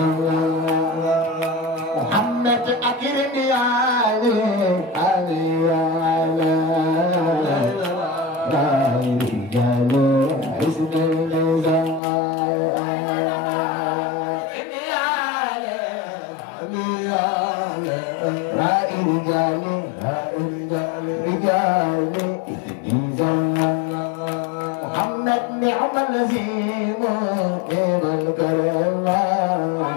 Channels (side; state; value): right; drops out; at 12.0 s